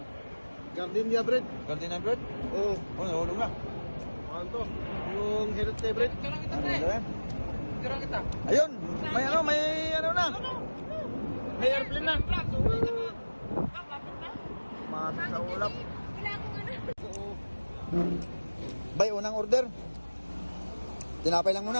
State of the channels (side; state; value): both; inverted; correlation -1.00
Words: Gardenia bread. Gardenia bread? Oh, Oh, nahulog na. ano to? Yung healthy bread. Tirang kita, Ano pre. ba yan? Tirang kita. Ayun! May ano na! May airplane na. Mati sa ulap. Wala akong ano. Bay, unang order. Tinapay lang